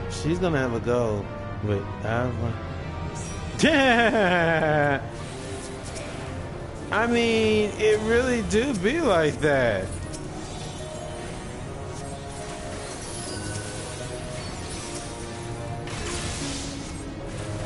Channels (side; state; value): both; identical; correlation 1.00